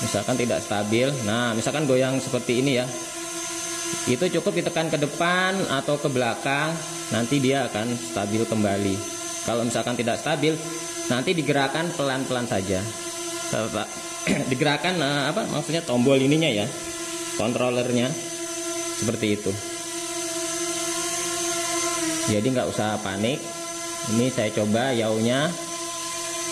misalkan tidak stabil. Nah, misalkan goyang seperti ini ya, itu cukup ditekan ke depan atau ke belakang, nanti dia akan stabil kembali. Kalau misalkan tidak stabil, nanti digerakkan pelan-pelan saja. Digerakkan maksudnya tombol ininya ya, kontrolernya, seperti itu. Jadi nggak usah panik. Ini saya coba yaunya.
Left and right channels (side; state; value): both; identical; correlation 1.00